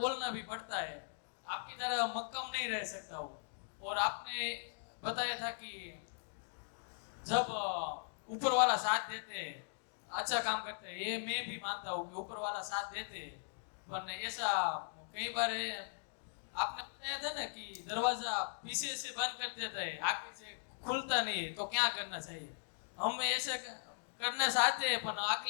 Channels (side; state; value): right; silent; digital silence